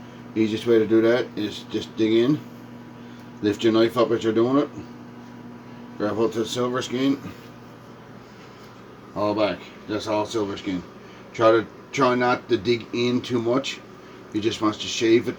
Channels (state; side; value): identical; both; correlation 1.00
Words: The easiest way to do that is just dig in, lift your knife up as you're doing it, grab hold to the silver skin, all back. That's all silver skin. Try not to dig in too much. You just want to shave it